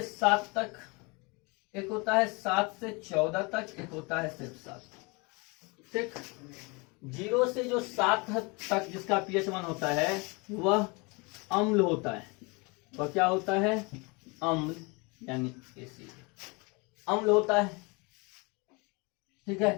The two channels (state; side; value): quieter; right; 28.6 dB